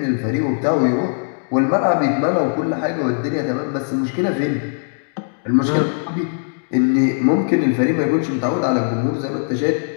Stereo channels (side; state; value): right; silent; digital silence